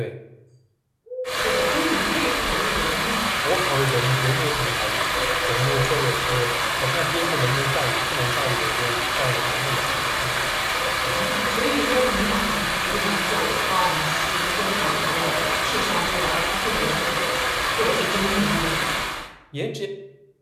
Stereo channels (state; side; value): identical; both; correlation 1.00